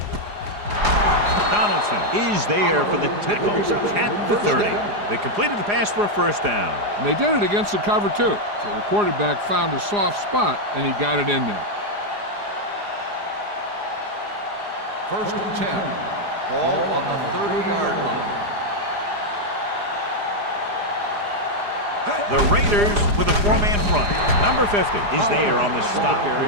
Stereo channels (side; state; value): left; late; 4.9 ms